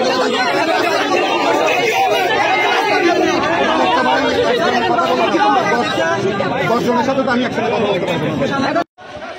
দশজনের সাথে তো আমি একসাথে কথা বলতে পারবো না।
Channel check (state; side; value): identical; both; correlation 1.00